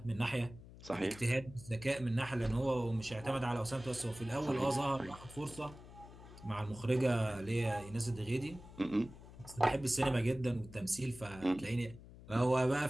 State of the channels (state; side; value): noise; left; hum, 17 dB below the sound